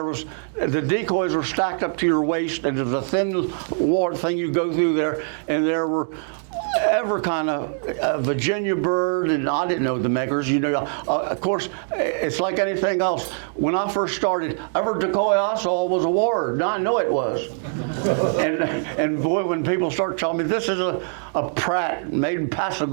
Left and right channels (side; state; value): left; silent; 63 dB below the other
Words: decoys were stacked up to your waist, and there was a thin ward thing you go through there, and there were every kind of Virginia bird, and I didn't know the makers. You know, of course, it's like anything else. When I first started, every decoy I saw was a ward. Now I know it was. and boy, when people start telling me this is a Pratt made in